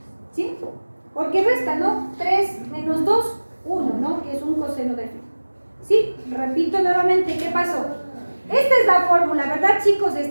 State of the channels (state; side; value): inverted; both; correlation -1.00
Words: ¿Sí? Porque resta, ¿no? 3 menos 2, 1, ¿no? Que es un coseno de phi. ¿Sí? Repito nuevamente, ¿qué pasó? Esta es la fórmula, ¿verdad, chicos?